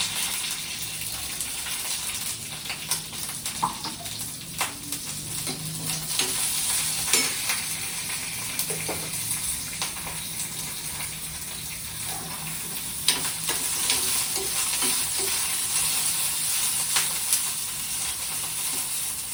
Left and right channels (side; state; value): both; identical; correlation 1.00